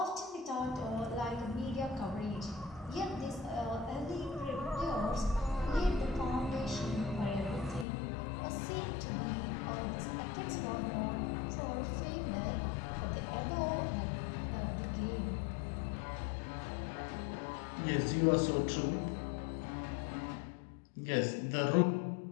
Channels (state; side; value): drops out; right; at 7.9 s